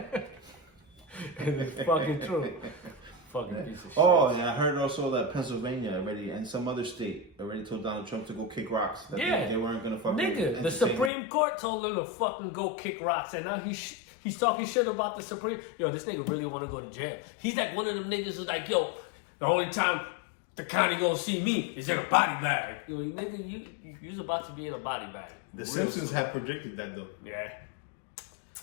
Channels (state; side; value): drops out; right; at 11.1 s